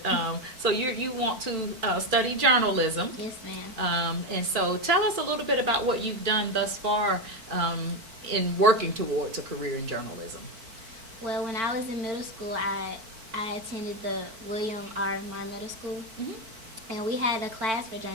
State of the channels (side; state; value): left; late; 4.5 ms